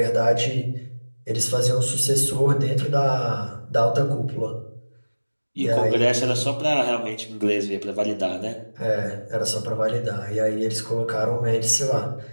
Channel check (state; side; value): inverted; both; correlation -1.00